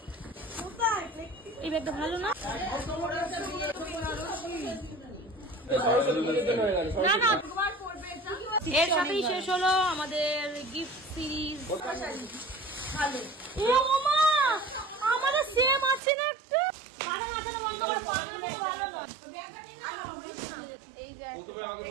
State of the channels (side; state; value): left; drops out; at 16.0 s